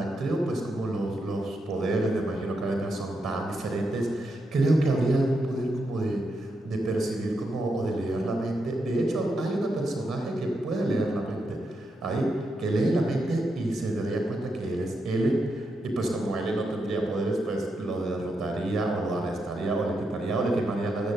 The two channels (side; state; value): both; normal; correlation 0.83